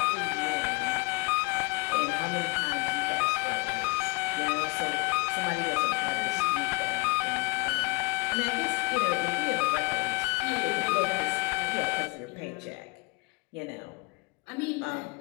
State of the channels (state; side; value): quieter; right; 26.5 dB